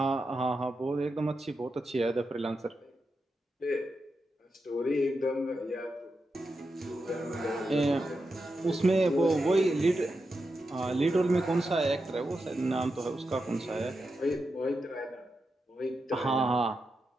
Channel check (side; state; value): both; normal; correlation 0.88